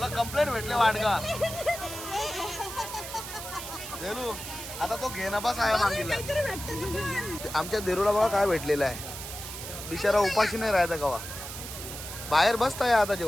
कंप्लेंट भेटले वाडगा. देरू आता तो घे ना बस आहे मागितला. आमच्या देरूला बघा काय भेटलेलं आहे. बिचारा उपाशी नाही राहायचा कवा. बाहेर बसताय आता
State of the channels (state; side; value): noise; right; hiss, 9 dB below the sound